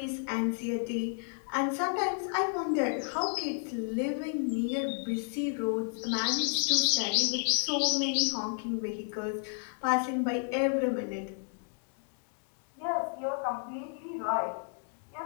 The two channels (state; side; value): silent; right; 57 dB below the other